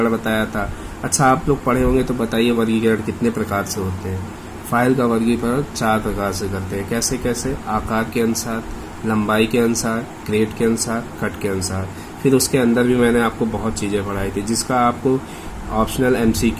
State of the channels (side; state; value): both; identical; correlation 1.00